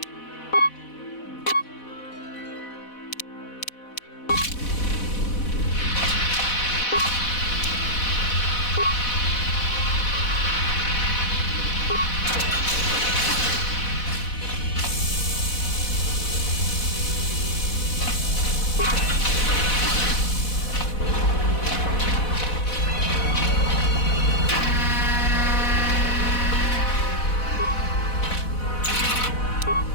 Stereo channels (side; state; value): right; late; 4.1 ms